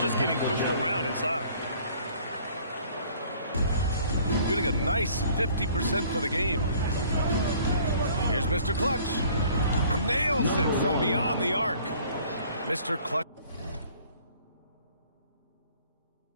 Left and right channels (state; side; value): inverted; both; correlation -0.55